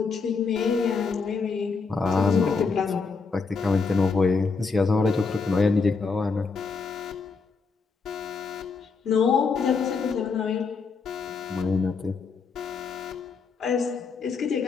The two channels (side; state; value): right; quieter; 4.7 dB